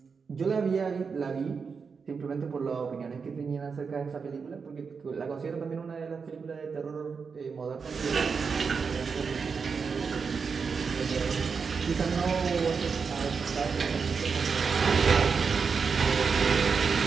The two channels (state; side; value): quieter; left; 5.5 dB